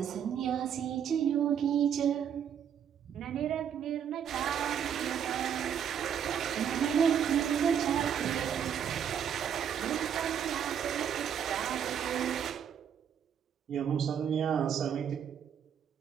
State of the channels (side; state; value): left; quieter; 8.5 dB